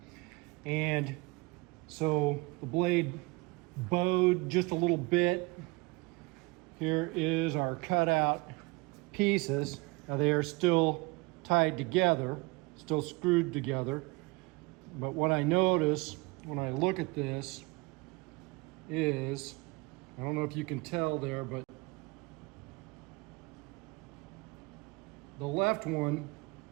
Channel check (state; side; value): quieter; left; 25.2 dB